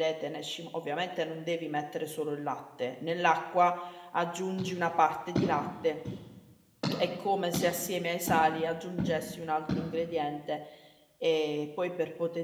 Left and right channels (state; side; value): identical; both; correlation 1.00